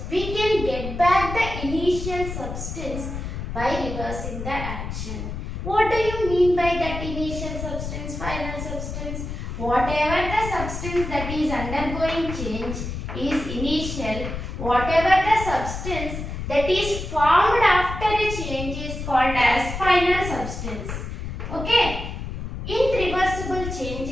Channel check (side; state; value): left; noise; rumble, 6 dB below the sound